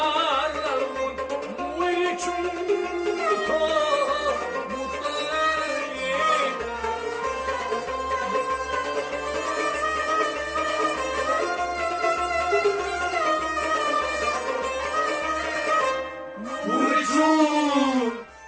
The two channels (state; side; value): identical; both; correlation 1.00